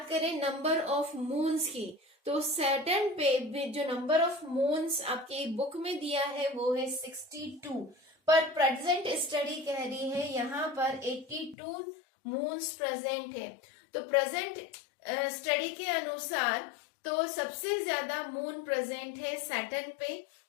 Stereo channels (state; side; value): drops out; right; at 11.6 s